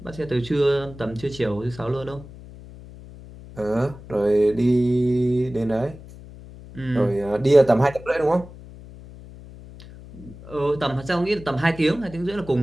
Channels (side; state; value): left; noise; hum, 17 dB below the sound